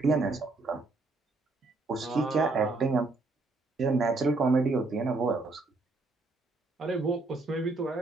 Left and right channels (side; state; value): left; quieter; 3.4 dB